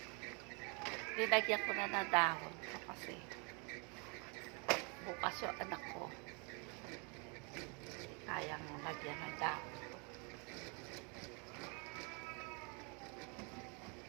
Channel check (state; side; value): quieter; left; 33.6 dB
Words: Linagyan ko na ng dahon ko kasi bukas yung anak ko. Kayang lagyan ng dahon.